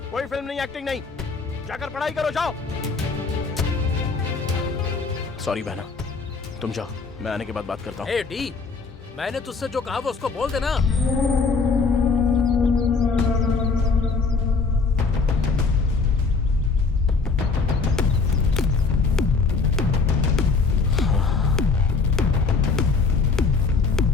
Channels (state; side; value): quieter; right; 4.5 dB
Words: कोई फिल्म नहीं, एक्टिंग नहीं, जाकर पढ़ाई करो, जाओ। सॉरी बहना, तुम जाओ, मैं आने के बाद बात करता हूँ। ए डी, मैंने तुझसे जो कहा वो उसको बोल देना।